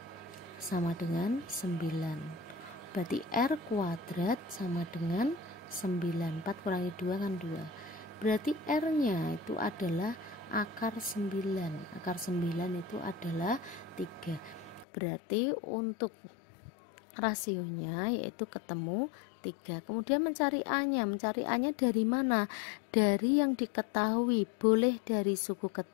sama dengan 9. Berarti R kuadrat sama dengan 9. 4 kurangi 2 kan 2. Berarti R-nya itu adalah akar 9. Akar 9 itu adalah 3. Berarti untuk rasionya yaitu ketemu 3. Kemudian mencari A-nya. Mencari A-nya dari mana? Dari yang diketahui. Boleh dari suku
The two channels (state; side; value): drops out; right; at 14.9 s